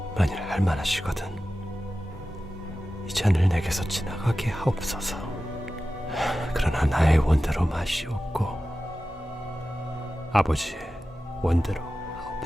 만일 할만하시거든 이 잔을 내게서 지나가게 하옵소서. 그러나 나의 원대로 마시옵고 아버지의 원대로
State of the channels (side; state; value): both; normal; correlation 0.94